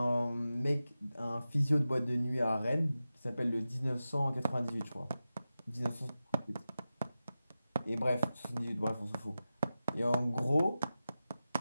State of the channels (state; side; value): inverted; both; correlation -0.93